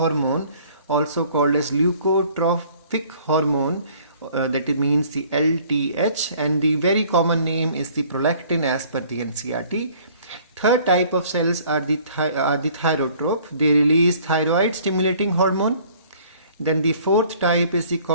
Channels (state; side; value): inverted; both; correlation -0.55